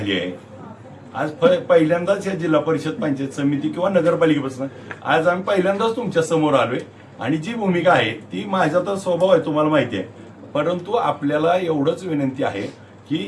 आहे? आज पहिल्यांदाच या जिल्हा परिषद पंचायत समिती किंवा नगरपालिकेपासून आज आम्ही पहिल्यांदाच तुमच्या समोर आलोय आणि जी भूमिका आहे ती माझा तर स्वभाव आहे तुम्हाला माहिती आहे, परंतु आपल्याला एवढंच विनंती आहे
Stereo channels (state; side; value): identical; both; correlation 1.00